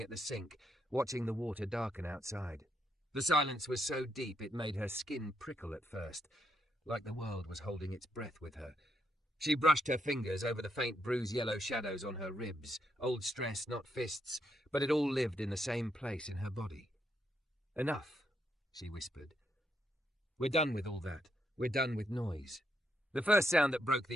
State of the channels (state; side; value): normal; both; correlation 0.78